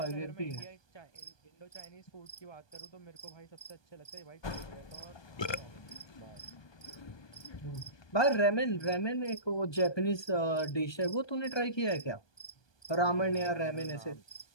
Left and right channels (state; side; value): late; right; 1.2 ms